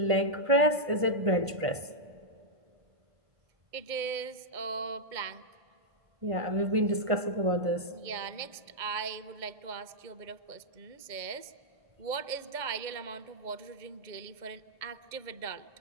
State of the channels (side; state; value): left; late; 1.5 ms